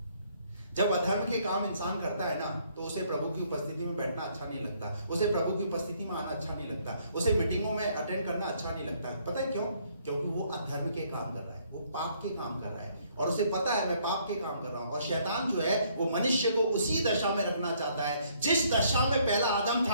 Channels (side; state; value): both; inverted; correlation -0.66